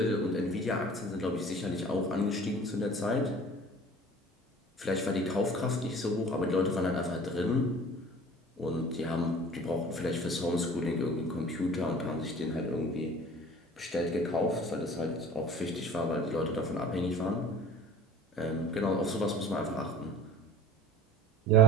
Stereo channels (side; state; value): both; normal; correlation 0.43